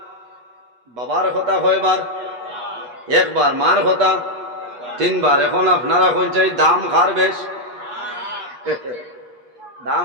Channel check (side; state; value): left; late; 8.3 ms